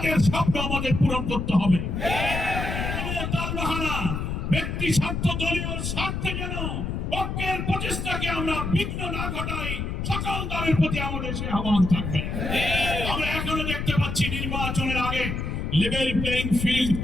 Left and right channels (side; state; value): left; noise; rumble, 3 dB below the sound